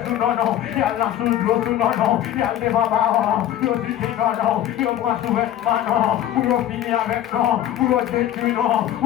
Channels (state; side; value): quieter; right; 11.9 dB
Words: tout non non, y'a dans sous l'eau tout non non, y'a devant baron, yo dit non non, yo prend sous vêtement non, ou yo fini avec non, ou yo détruit non,